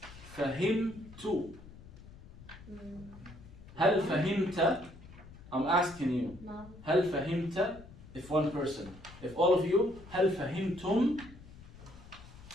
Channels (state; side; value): noise; left; rumble, 18 dB below the sound